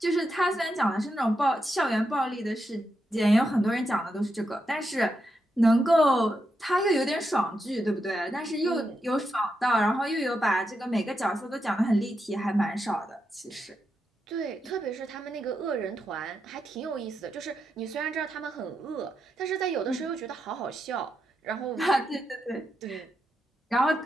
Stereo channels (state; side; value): normal; both; correlation 0.84